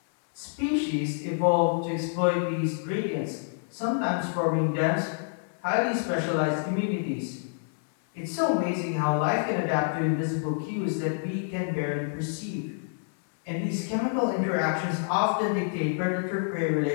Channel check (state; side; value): silent; right; 60 dB below the other